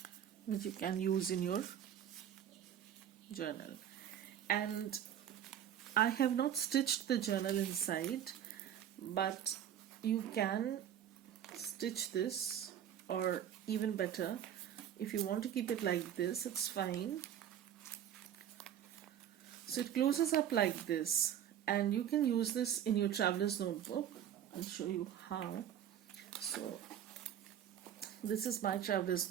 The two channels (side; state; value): left; quieter; 10.1 dB